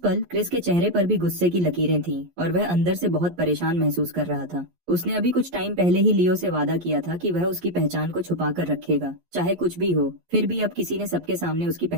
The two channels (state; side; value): late; left; 11 ms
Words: क्रिस के चेहरे पर भी गुस्से की लकीरें थीं और वह अंदर से बहुत परेशान महसूस कर रहा था। उसने अभी कुछ टाइम पहले ही लियो से वादा किया था कि वह उसकी पहचान को छुपा कर रखेगा, चाहे कुछ भी हो। फिर भी अब किसी ने सबके सामने उसकी